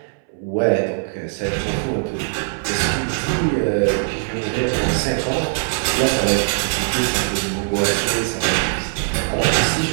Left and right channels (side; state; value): left; silent; 62 dB below the other